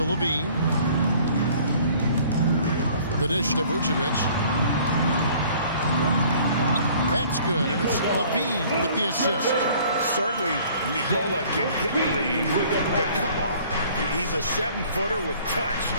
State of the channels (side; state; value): both; inverted; correlation -0.54